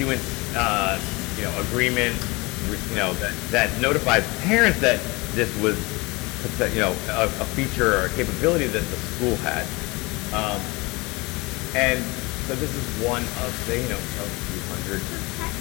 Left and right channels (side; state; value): right; quieter; 24.9 dB